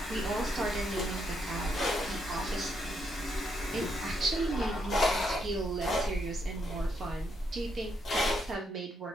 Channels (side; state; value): both; normal; correlation 0.77